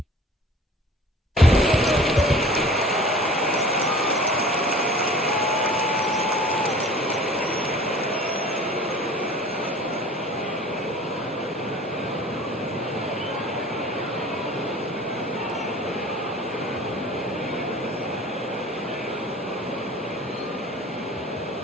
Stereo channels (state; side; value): normal; both; correlation 0.45